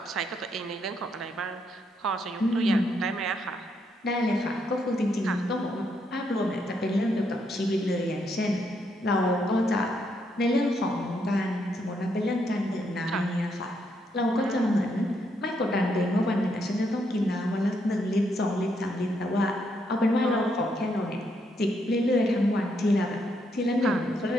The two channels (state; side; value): normal; both; correlation 0.76